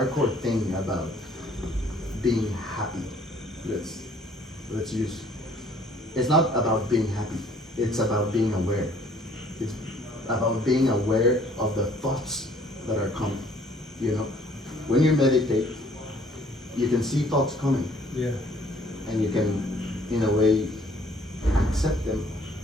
thing about being happy, let's use, it's not about being happy, it's about being aware. It's about being aware of the thoughts that are coming, you know? When you meditate, you can see thoughts coming, Yeah. and you can, in a way, accept them.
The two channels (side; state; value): both; normal; correlation 0.59